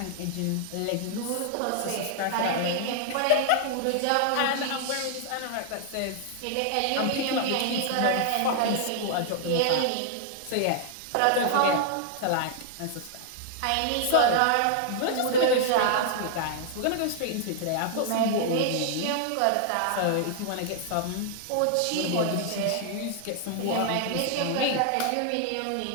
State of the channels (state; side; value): different; both; correlation 0.00